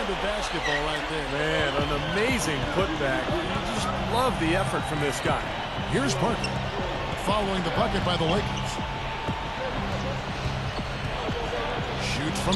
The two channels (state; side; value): identical; both; correlation 1.00